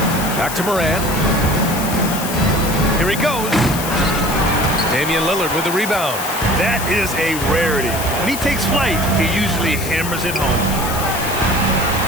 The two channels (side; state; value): left; noise; hiss, 7 dB below the sound